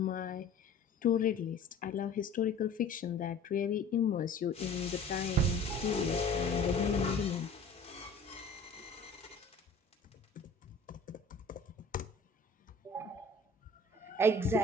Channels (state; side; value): quieter; right; 3.1 dB